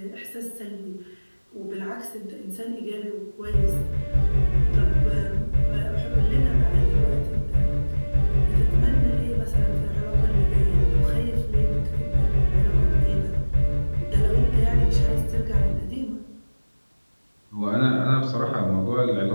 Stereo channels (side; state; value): both; inverted; correlation -1.00